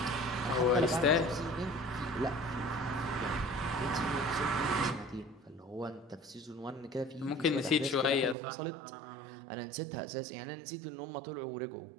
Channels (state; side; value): drops out; left; at 8.3 s